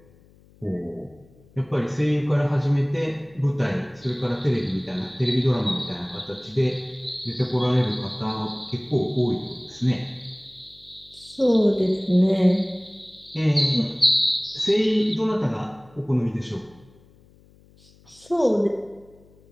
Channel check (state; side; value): noise; left; hum, 28 dB below the sound